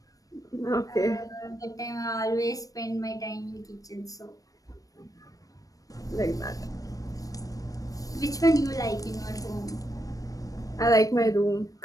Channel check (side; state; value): right; late; 0.17 ms